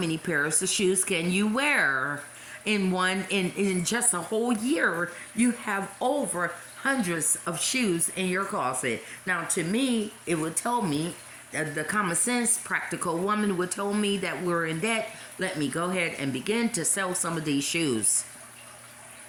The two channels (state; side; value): identical; both; correlation 1.00